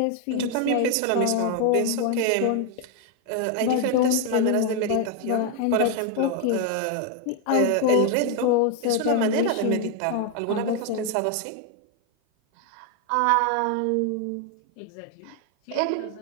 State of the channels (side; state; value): both; different; correlation 0.01